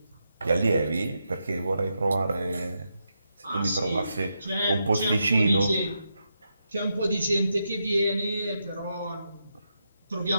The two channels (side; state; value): both; inverted; correlation -0.84